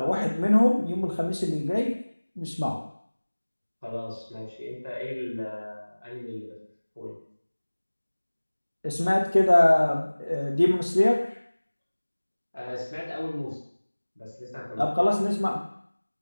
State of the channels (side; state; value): both; inverted; correlation -1.00